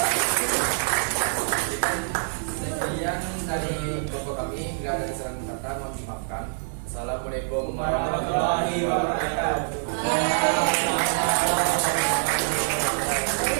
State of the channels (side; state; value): left; silent; digital silence